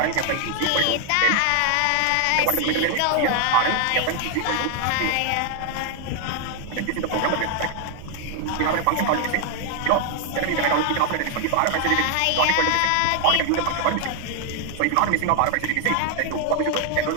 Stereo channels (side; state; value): both; different; correlation 0.00